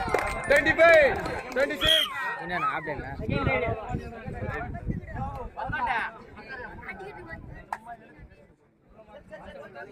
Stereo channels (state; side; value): identical; both; correlation 1.00